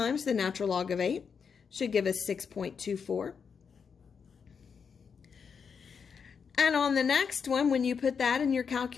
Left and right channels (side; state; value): right; quieter; 6.2 dB